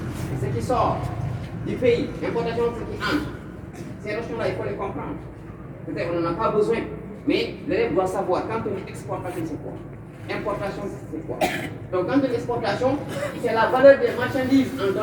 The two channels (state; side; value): identical; both; correlation 1.00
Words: c'est ce qui sort du pays. Importation, c'est ce qui entre. Ces notions-là, il faut les comprendre. Peut-être qu'on n'en a pas besoin, mais l'élève doit savoir quand on dit exportation, c'est quoi. Importation, c'est quoi. Donc, quand on dit exportation, c'est la valeur des marchandises en